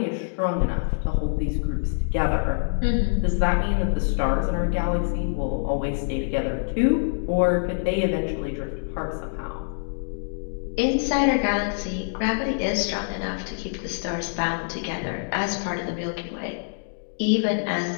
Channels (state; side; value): silent; right; digital silence